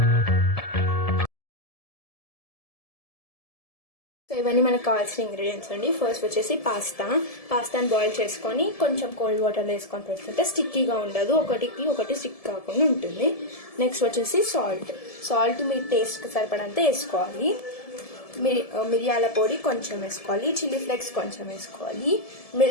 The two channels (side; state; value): right; late; 1.7 ms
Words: సో ఇవన్నీ మనకు కావాల్సిన ఇంగ్రీడియంట్స్ అండి. ఫస్ట్ వచ్చేసి పాస్తాని బాయిల్ చేసుకొని కొంచెం కోల్డ్ వాటర్లో వేసుకొని పెట్టుకుంటే స్టిక్కీగా ఉండదు, ఒకటి స్టిక్ కాకుండా ఉంటుంది. నెక్స్ట్ వచ్చేసి సాల్ట్ మీ టేస్ట్కి సరిపడంత వేసుకోవాలి. మిరియాల పొడి కొంచెం వేసుకోవాలి, చిల్లీ ఫ్లేక్స్ కొంచెం వేసుకోవాలి,